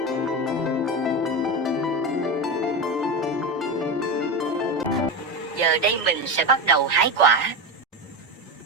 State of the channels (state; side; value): normal; both; correlation 0.18